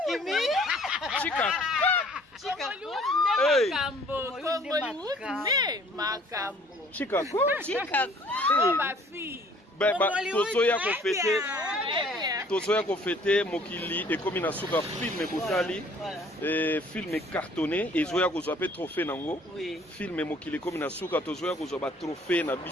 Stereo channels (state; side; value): normal; both; correlation 0.56